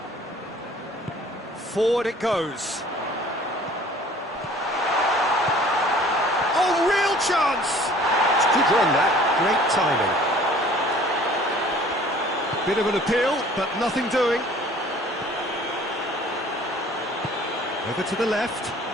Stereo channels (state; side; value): normal; both; correlation 0.51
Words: Forward it goes. Oh, real chance! It's a good run, that. Great timing. Bit of an appeal, but nothing doing. Over to the left.